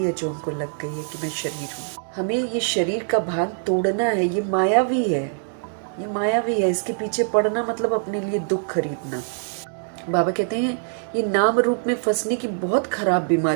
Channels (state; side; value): silent; left; 62 dB below the other